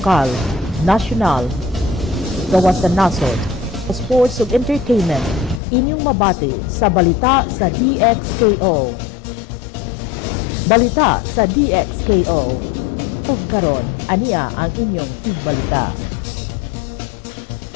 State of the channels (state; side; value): drops out; right; at 5.6 s